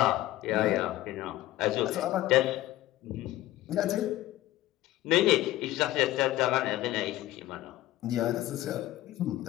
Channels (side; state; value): right; quieter; 15.8 dB